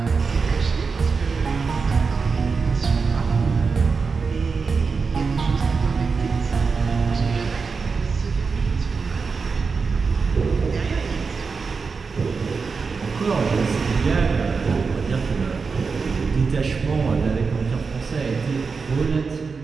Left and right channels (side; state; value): left; quieter; 4.9 dB